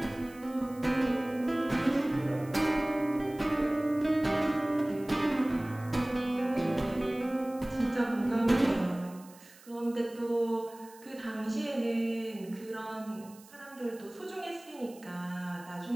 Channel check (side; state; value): right; noise; hiss, 23 dB below the sound